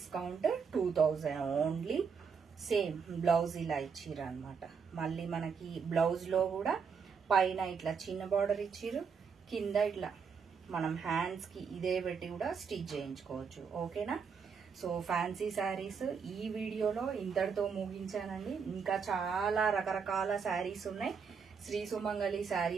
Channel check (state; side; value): quieter; left; 6.0 dB